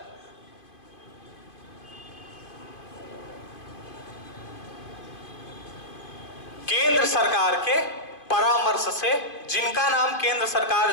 केंद्र सरकार के परामर्श से, जिनका नाम केंद्र सरकार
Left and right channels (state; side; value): late; right; 2.5 ms